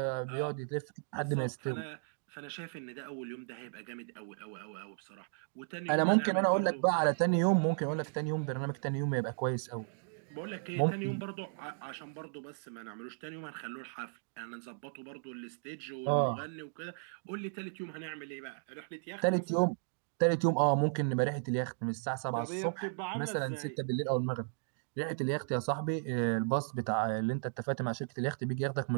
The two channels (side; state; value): left; silent; digital silence